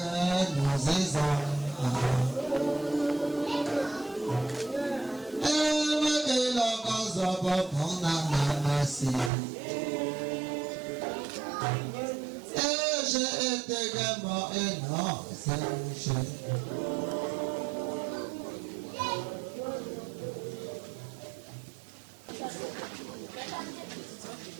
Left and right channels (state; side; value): drops out; left; at 9.3 s